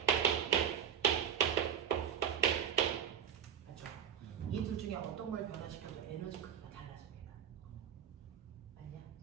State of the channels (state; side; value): quieter; left; 8.9 dB